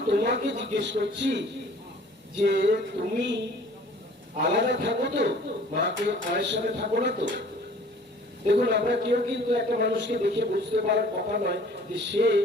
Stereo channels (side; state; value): both; normal; correlation 0.51